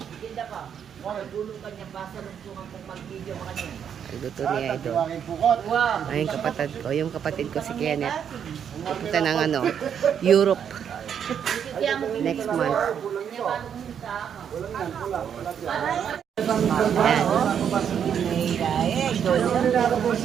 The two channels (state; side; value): quieter; left; 8.2 dB